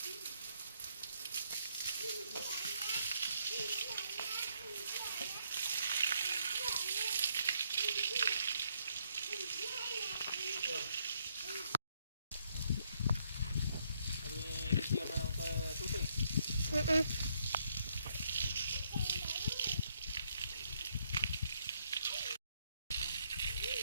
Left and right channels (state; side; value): inverted; both; correlation -0.73